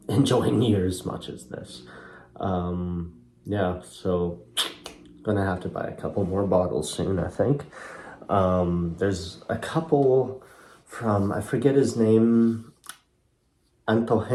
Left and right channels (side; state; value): both; identical; correlation 1.00